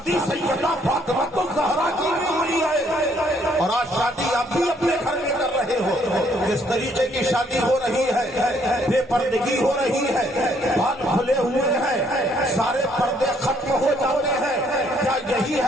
سیدہ فاطمہ الزہرا کی بھی ہوئی ہے, اور آج شادی آپ بھی اپنے گھر میں کر رہے ہو. کس طریقے کی شادی ہو رہی ہے؟ بے پردگی ہو رہی ہے, بال کھلے ہوئے ہیں, سارے پردے ختم ہو جاتے ہیں. کیا یہی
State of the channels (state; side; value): normal; both; correlation 0.67